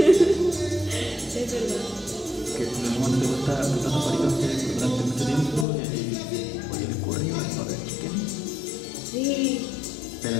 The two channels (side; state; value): right; drops out; at 5.7 s